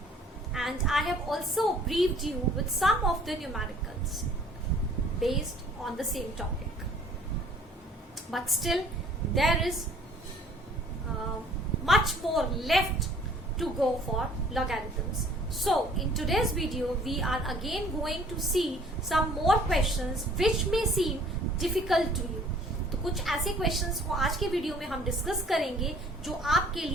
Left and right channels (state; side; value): normal; both; correlation 0.55